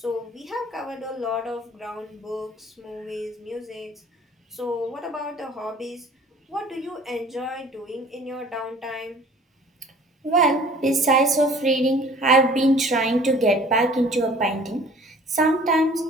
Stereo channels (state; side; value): normal; both; correlation 0.50